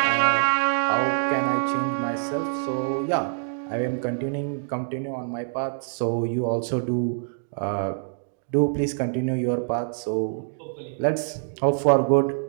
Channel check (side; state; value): left; silent; digital silence